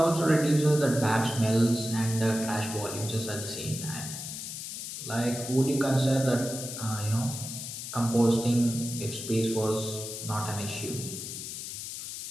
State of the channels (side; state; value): left; noise; hiss, 7 dB below the sound